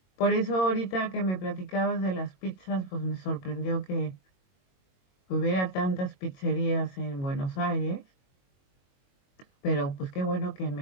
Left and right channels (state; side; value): late; right; 22 ms